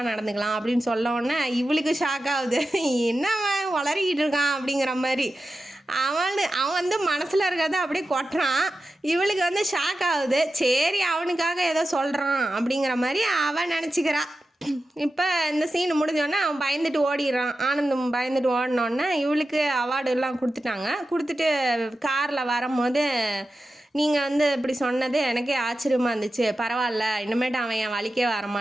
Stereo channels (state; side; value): normal; both; correlation 0.92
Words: நடந்துக்கலாம் அப்படின்னு சொல்லவுடனே இவளுக்கு ஷாக் ஆகுது. என்னவன் வளரிக்கிட்டு இருக்கான் அப்படிங்கிற மாதிரி. அவன் வந்து மனசில் இருக்கிறத அப்படியே கொட்டுறான். இவளுக்கு வந்து ஷாக் ஆகுது. சரி அவனுக்காக ஏதோ சொல்கிறான் அப்படிங்கிற மாதிரி அவன் நினச்சிக்கிறா. இப்போ இந்த சீன் முடிஞ்சோடனே அவன் பயந்துட்டு ஓடிடுறான். ஆனந்தம் பயந்துட்டு ஓடினோடனே இவளுக்கு அவார்டு எல்லாம் கொடுத்துட்டு காரில் வரும்போது நீங்கள் வந்து இப்படி சொன்னது எனக்கே ஆச்சரியமாக இருந்துச்சு. பரவாயில்ல, இனிமேட்டு அவன் என் வழிக்கே